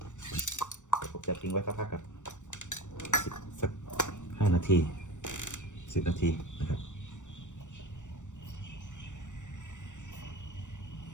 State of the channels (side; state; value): right; late; 0.85 ms